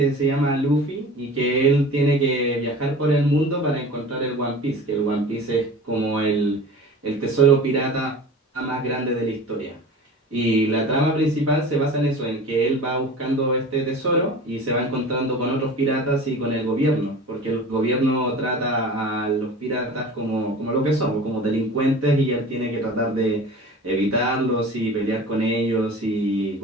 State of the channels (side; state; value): both; normal; correlation 0.38